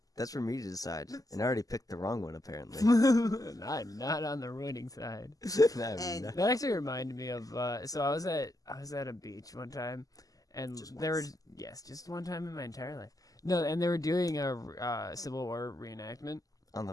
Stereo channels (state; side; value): late; right; 0.17 ms